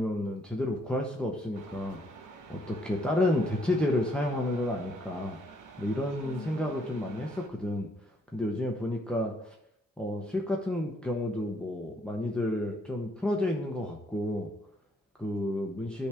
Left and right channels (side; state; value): both; normal; correlation 0.69